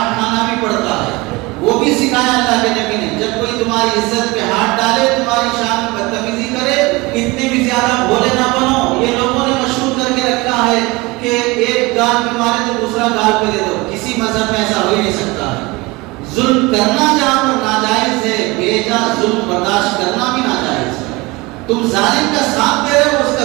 کھانا بھی پڑتا ہے، وہ بھی سکھایا اللہ کے نبی نے۔ جب کوئی تمہاری عزت پہ ہاتھ ڈالے، تمہاری شان میں بدتمیزی کرے، اتنے بھی زیادہ بھولے نہ بنو۔ یہ لوگوں نے مشہور کر کے رکھا ہے کہ ایک گال پہ مارے تو دوسرا گال پہ دے دو، کسی مذہب میں ایسا ہو ہی نہیں سکتا ہے۔ ظلم کرنا جہاں پر ناجائز ہے، بیجا ظلم برداشت کرنا بھی ناجائز ہے۔ تم ظالم کا ساتھ دے رہے ہو، اس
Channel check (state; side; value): quieter; left; 23.4 dB